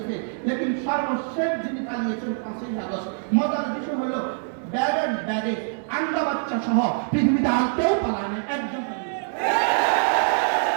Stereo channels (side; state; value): left; silent; digital silence